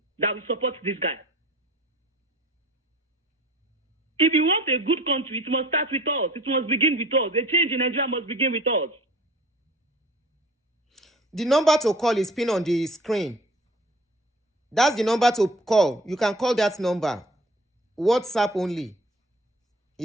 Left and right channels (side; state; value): both; normal; correlation 0.46